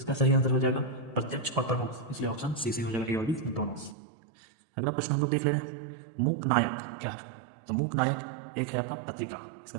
सही आंसर हो जाएगा प्रत्यक्ष और प्रमुख, इसलिए ऑप्शन सी सी हो जाएगा, ए और बी दोनों। अगला प्रश्न हम लोग देख ले रहे हैं, मूक नायक क्या है? तो मूक नायक एक है आपका पत्रिका,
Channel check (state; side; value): drops out; left; at 4.0 s